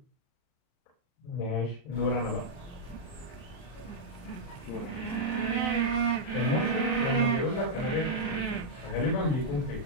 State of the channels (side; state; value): right; late; 40 ms